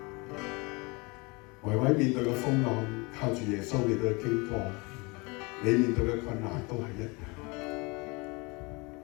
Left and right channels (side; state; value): right; quieter; 27.4 dB